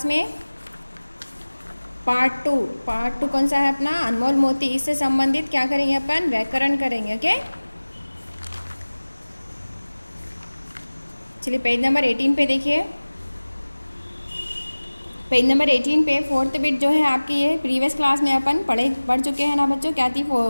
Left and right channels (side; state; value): both; inverted; correlation -1.00